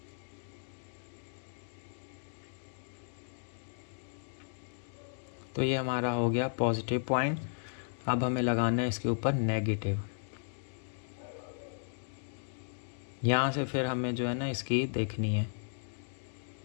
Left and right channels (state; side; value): silent; right; digital silence